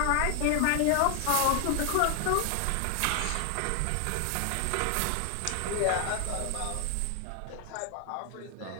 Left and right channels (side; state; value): both; different; correlation 0.00